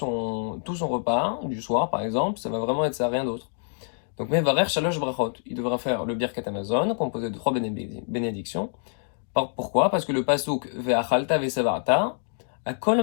repas du soir, par exemple, ça va vraiment être ça, rien d'autre. Donc, Mevarer Shalosh Brachot, il devra faire le Birkat Hamazon, composé de 3 bénédictions. Pourquoi? Parce que le pasuk Ve'achalta ve'savarta, à kol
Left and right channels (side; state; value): right; silent; digital silence